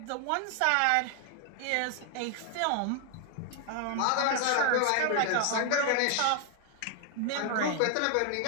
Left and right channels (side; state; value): both; different; correlation 0.00